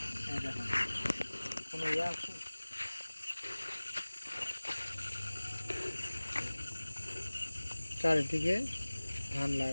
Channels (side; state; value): both; inverted; correlation -1.00